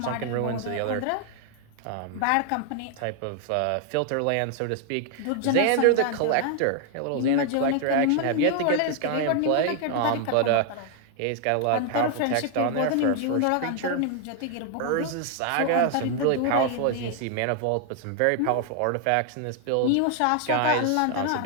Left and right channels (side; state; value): both; different; correlation 0.00